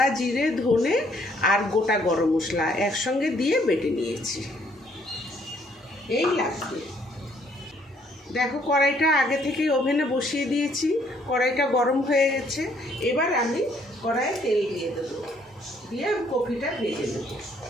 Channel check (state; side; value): normal; both; correlation 0.66